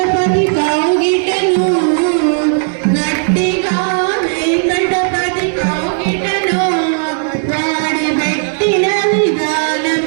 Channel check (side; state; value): left; silent; 59 dB below the other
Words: కోకిటను వాడి పెట్టిన